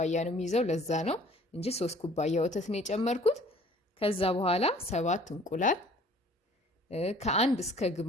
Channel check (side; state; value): both; normal; correlation 0.53